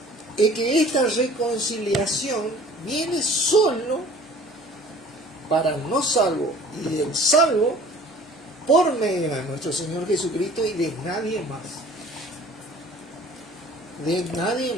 es que esta reconciliación viene solo para el no salvo y del salvo por medio de nuestro Señor Jesucristo y de nadie más. De nadie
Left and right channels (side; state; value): both; normal; correlation 0.49